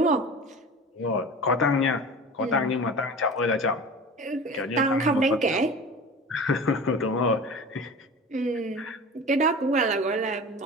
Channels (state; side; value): normal; both; correlation 0.35